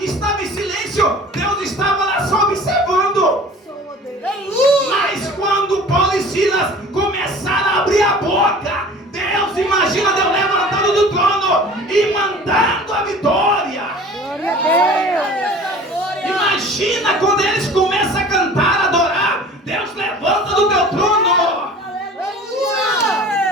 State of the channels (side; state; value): both; normal; correlation 0.44